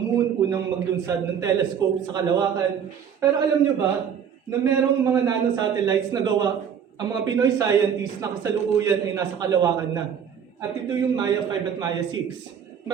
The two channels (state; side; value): quieter; left; 7.9 dB